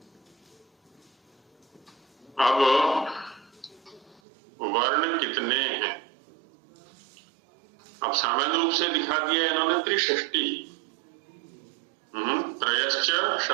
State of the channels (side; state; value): left; drops out; at 4.2 s